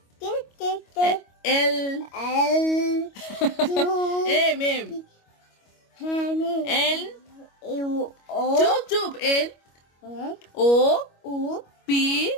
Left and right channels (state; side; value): late; right; 25 ms